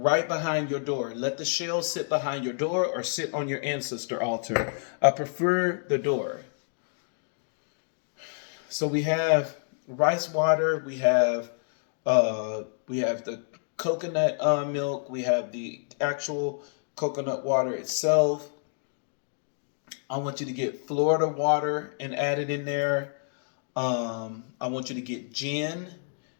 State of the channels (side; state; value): right; silent; digital silence